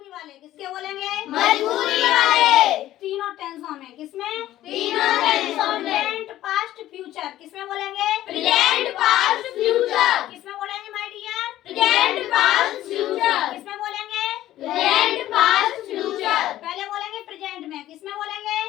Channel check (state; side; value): quieter; right; 13.9 dB